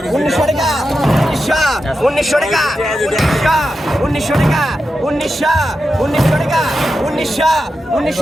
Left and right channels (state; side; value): normal; both; correlation 0.89